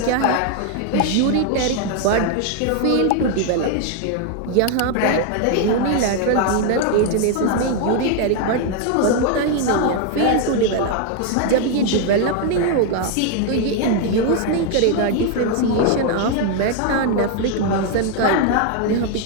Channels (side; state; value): both; different; correlation 0.00